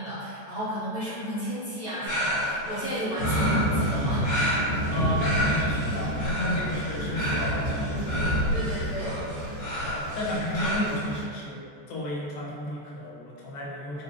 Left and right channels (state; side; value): late; right; 14 ms